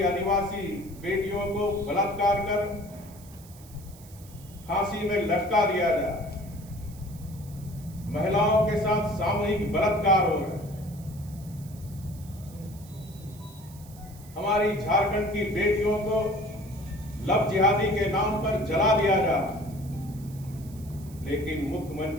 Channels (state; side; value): noise; right; hiss, 22 dB below the sound